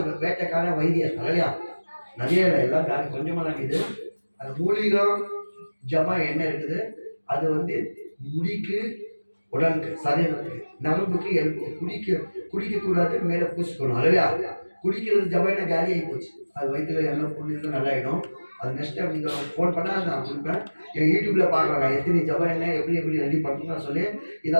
வேட்டைக்கார வைத்தியர் இல்லையா? நிறைய இல்லை, எல்லாம் கொஞ்சமாக தான் இருக்குது. அந்த மூலிகை ஜபா என்ன இருக்குது அது வந்து முடிக்கு, உடலுக்கு, சரீரத்துக்கு, நரம்புக்கு, எலும்புக்கு குடிக்கக்கூடாது. மேலே பூசிக்கணும் இல்லையா? குடிக்கிறது ஜபாயினா காலி ஆகி போச்சு. அது வயிற்றுல எல்லாம் புண்ணியம் நல்லாயிடும். அது நெக்ஸ்ட் டைம் நீங்கள் ஃபோன் பண்ணால் நான் கொடுப்பேன். என் யூடியூப்பில் பார்க்குறேன் எத்தனை ஜபா என்ன எப்படி ரெடி பண்ணணும்னு சொல்லி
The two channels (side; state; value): both; inverted; correlation -1.00